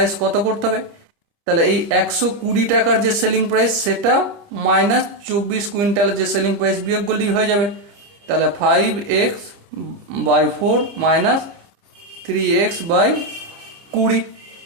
কত করতে হবে? তাহলে এই 120 টাকার যে সেলিং প্রাইস সেটা মাইনাস 24 কুইন্টালের যে সেলিং প্রাইস বিয়োগ করলেই হয়ে যাবে। তাহলে 5x/4 মাইনাস 3x/20।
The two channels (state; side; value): late; left; 30 ms